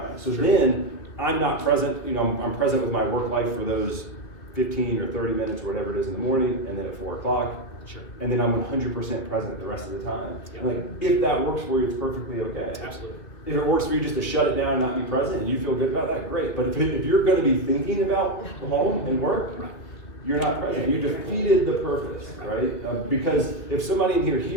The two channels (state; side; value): late; right; 3.0 ms